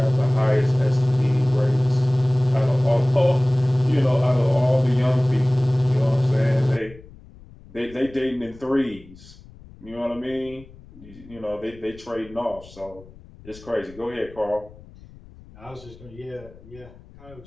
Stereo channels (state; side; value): noise; left; rumble, 21 dB below the sound